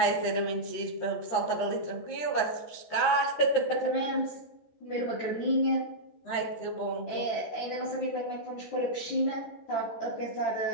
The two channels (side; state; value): right; late; 13 ms